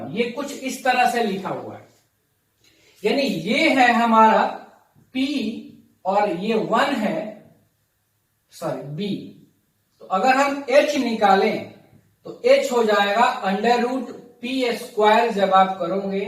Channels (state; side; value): identical; both; correlation 1.00